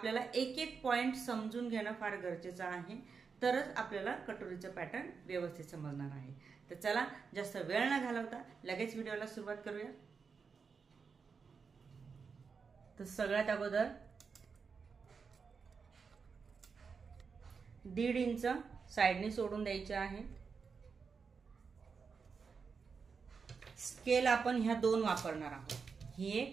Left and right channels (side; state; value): left; quieter; 5.4 dB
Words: एक एक पॉइंट समजून घेणं फार गरजेचं आहे, तरच आपल्याला कटोरीचं पॅटर्न व्यवस्थित समजणार आहे। तर चला जास्त वेळ न घालवता लगेच व्हिडिओला सुरुवात करूया। तर सगळ्यात अगोदर 1.5 इंच साइडने सोडून द्यायचे आहे। स्केल आपण ह्या दोन वापरणार आहोत, ही